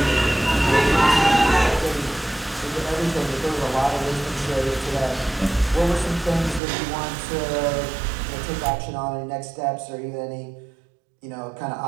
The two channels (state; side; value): drops out; left; at 6.6 s